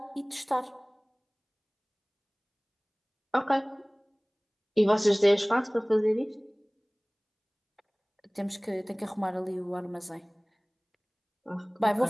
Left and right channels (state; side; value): identical; both; correlation 1.00